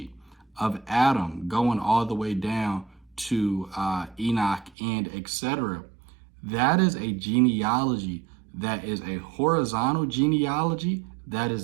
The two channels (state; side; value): drops out; left; at 4.8 s